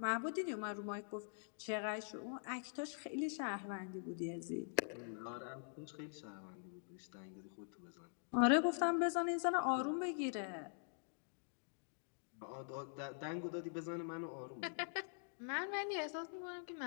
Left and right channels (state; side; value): silent; right; digital silence